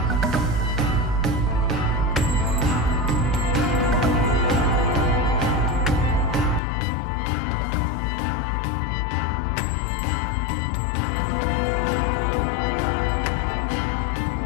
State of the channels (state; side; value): drops out; right; at 6.6 s